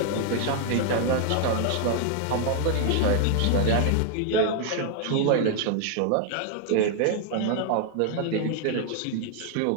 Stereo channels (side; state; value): both; different; correlation 0.00